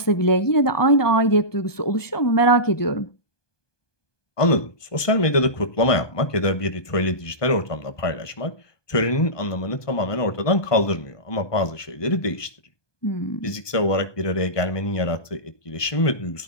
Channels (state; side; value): late; right; 1.2 ms